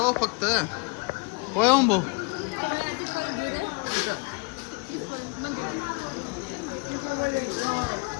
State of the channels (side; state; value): right; quieter; 29.3 dB